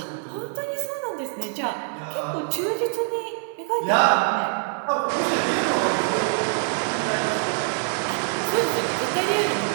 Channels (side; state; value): left; silent; digital silence